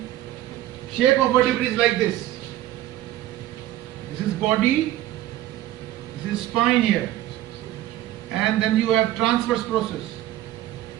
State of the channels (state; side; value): quieter; left; 14.1 dB